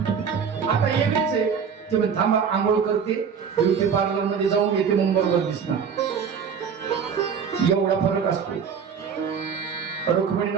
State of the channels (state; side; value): quieter; left; 6.8 dB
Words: आता वेगळीच आहे. ते म्हणे, थांबा आंघोळ करते, ब्युटी पार्लर मध्ये जाऊन येते, मग बरोबर दिसणार. एवढा फरक असतो.